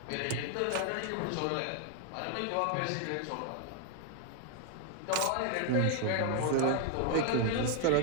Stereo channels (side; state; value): both; different; correlation 0.00